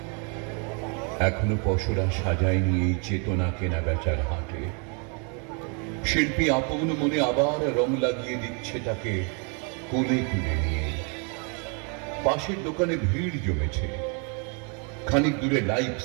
এখনো পশরা সাজায়নি এই চেতনা কেনা বেচার হাটে। শিল্পী আপন মনে আবার রং লাগিয়ে দিচ্ছে তাকে কোলে তুলে নিয়ে। পাশের দোকানে ভিড় জমেছে, খানিক দূরে লাইভ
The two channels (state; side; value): quieter; left; 36.5 dB